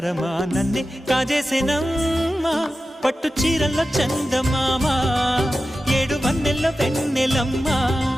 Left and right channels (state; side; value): normal; both; correlation 0.93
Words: నన్నే కాజేసేనమ్మా పట్టు చీరల్లో చందమామా ఏడు వన్నెల్లో వెన్నెలమ్మా